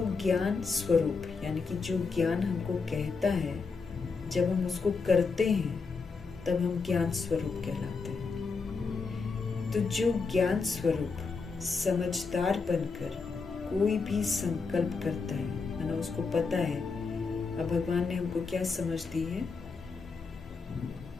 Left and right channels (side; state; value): right; quieter; 4.7 dB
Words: ज्ञान स्वरूप यानी कि जो ज्ञान हमको कहता है, जब हम उसको करते हैं तब हम ज्ञान स्वरूप कहलाते हैं। तो जो ज्ञान स्वरूप समझदार बनकर कोई भी संकल्प करता है, मानो उसको पता है, अब भगवान ने हमको क्या समझ दी है